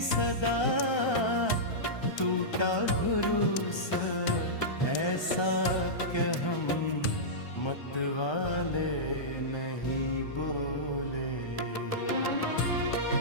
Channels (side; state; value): right; late; 1.3 ms